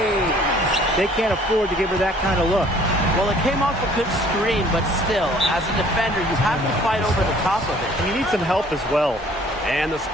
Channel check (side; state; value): both; normal; correlation 0.56